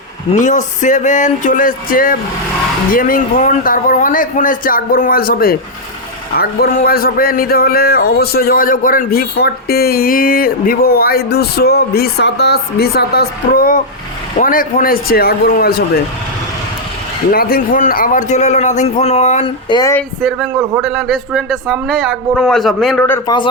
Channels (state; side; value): normal; both; correlation -0.02